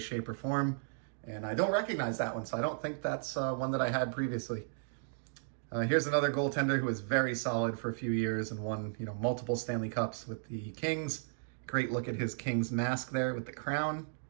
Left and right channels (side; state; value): left; silent; digital silence